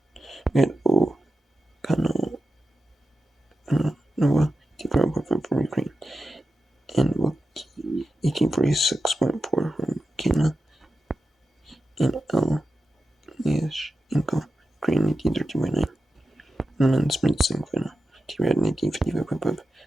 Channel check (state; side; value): normal; both; correlation 0.91